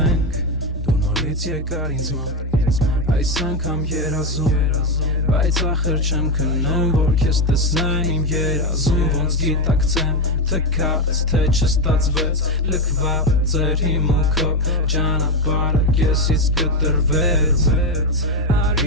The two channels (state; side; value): normal; both; correlation 0.11